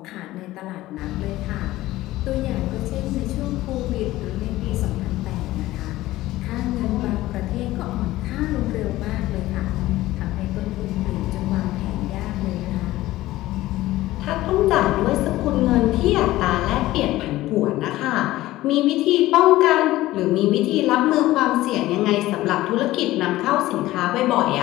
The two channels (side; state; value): right; quieter; 16.6 dB